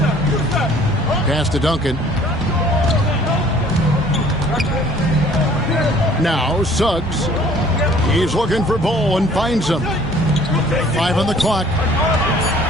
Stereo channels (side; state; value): both; normal; correlation 0.54